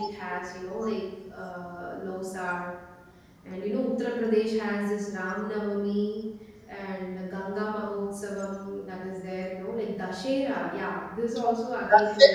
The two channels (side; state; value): both; identical; correlation 1.00